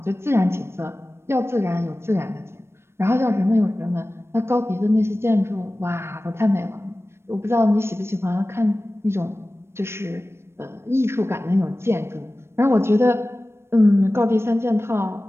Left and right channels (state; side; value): late; left; 0.12 ms